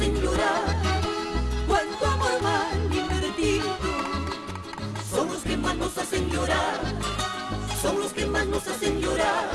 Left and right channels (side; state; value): both; identical; correlation 1.00